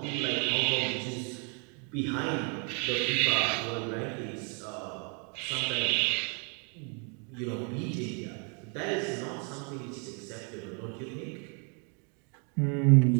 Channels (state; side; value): quieter; left; 37.5 dB